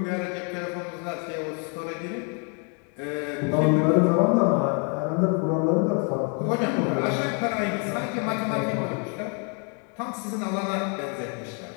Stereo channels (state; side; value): quieter; right; 38.7 dB